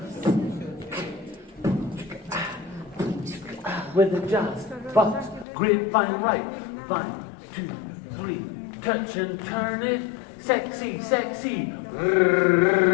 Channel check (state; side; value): drops out; right; at 5.5 s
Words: With the jazz, but grapevine right. 1, 2, 3. Touch and turn it. Sexy, sexy.